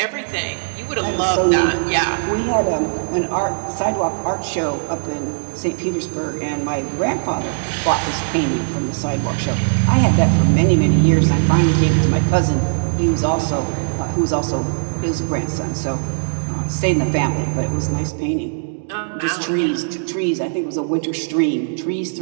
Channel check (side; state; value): left; silent; digital silence